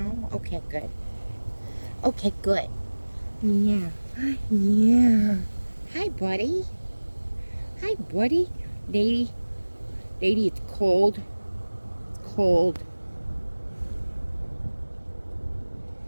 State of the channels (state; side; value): inverted; both; correlation -1.00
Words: Okay, good. Okay, good. Yeah. Yeah. Hi, buddy. Hi, buddy. Lady. Lady, it's cold. It's cold.